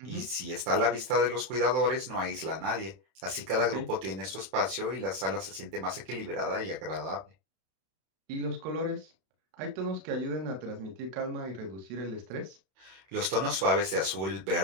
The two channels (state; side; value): late; left; 31 ms